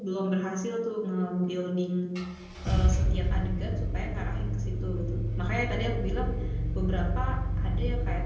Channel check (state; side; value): identical; both; correlation 1.00